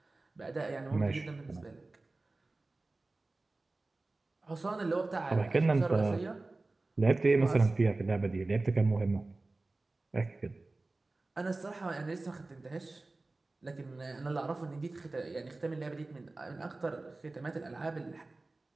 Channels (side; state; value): left; quieter; 3.2 dB